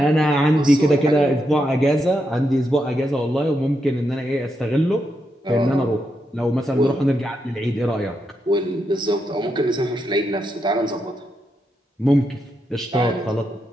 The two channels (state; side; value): normal; both; correlation 0.83